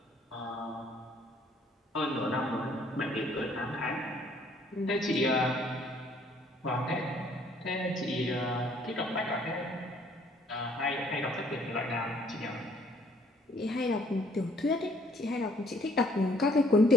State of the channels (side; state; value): both; normal; correlation 0.62